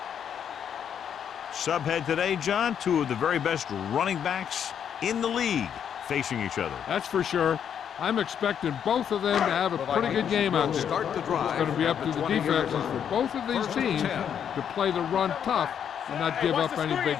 Subhead today, John, two of the very best running backs in the league facing each other. That's for sure. I'm expecting both of them to have a pretty good game out there. It's going to be up to the defenses for both of these teams to play the run tough and not give up any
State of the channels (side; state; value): right; quieter; 8.5 dB